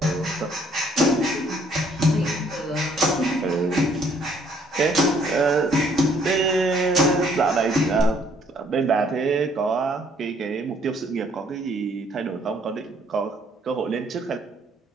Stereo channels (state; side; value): normal; both; correlation 0.64